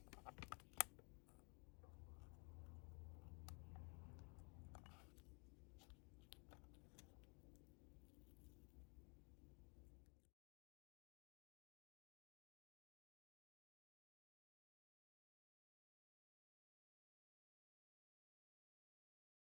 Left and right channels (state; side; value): quieter; right; 32.6 dB